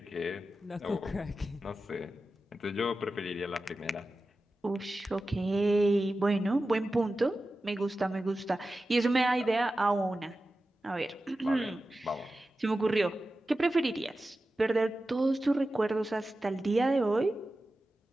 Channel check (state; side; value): normal; both; correlation 0.94